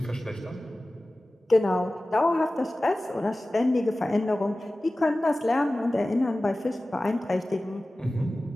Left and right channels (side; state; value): both; normal; correlation 0.97